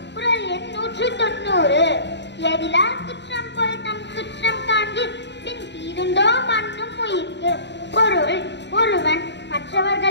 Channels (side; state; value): right; late; 0.51 ms